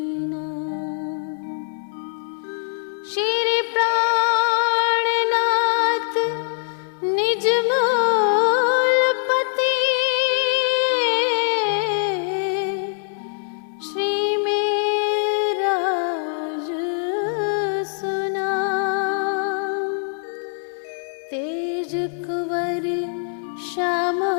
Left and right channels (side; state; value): right; silent; 64 dB below the other